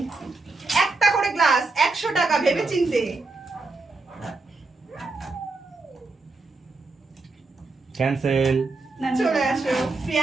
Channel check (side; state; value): left; quieter; 3.6 dB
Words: একটা করে গ্লাস, 100 টাকা, ভেবে চিনতে। ক্যান্সেল। চলে আসো